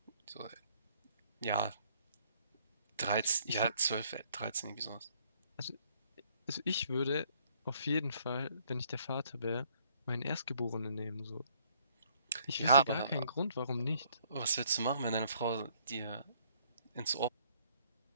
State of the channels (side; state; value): both; inverted; correlation -0.65